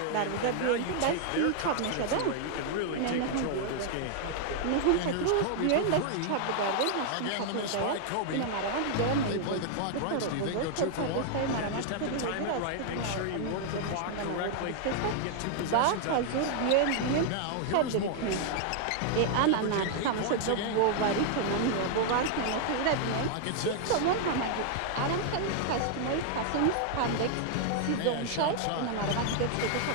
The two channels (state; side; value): different; both; correlation 0.00